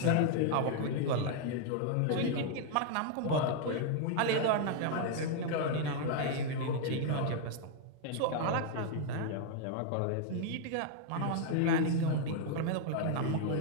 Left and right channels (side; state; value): both; different; correlation 0.00